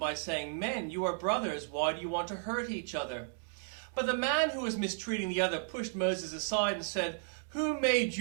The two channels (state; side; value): silent; left; digital silence